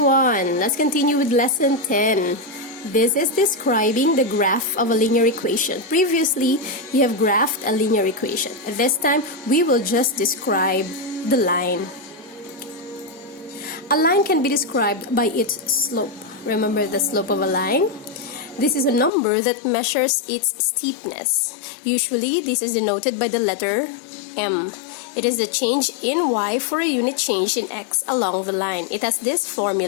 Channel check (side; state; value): right; drops out; at 19.1 s